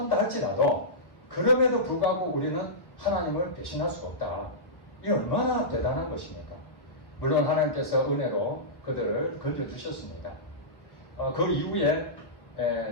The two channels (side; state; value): right; late; 1.1 ms